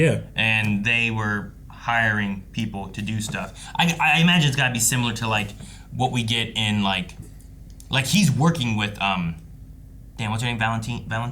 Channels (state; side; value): identical; both; correlation 1.00